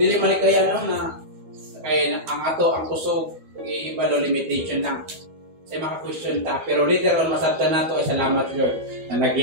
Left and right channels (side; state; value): left; late; 12 ms